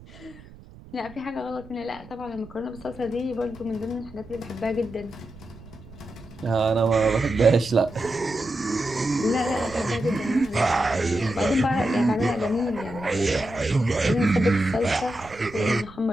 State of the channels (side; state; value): right; noise; rumble, 20 dB below the sound